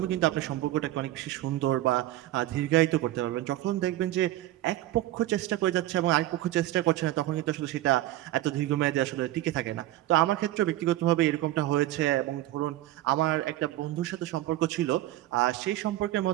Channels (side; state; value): left; quieter; 15.0 dB